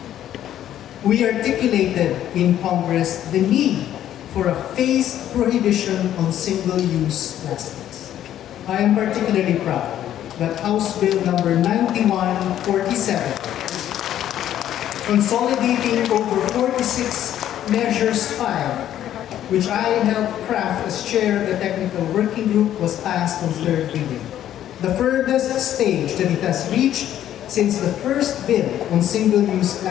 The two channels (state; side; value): quieter; right; 11.5 dB